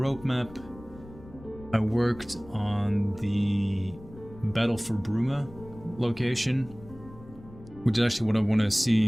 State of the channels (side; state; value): left; noise; rumble, 19 dB below the sound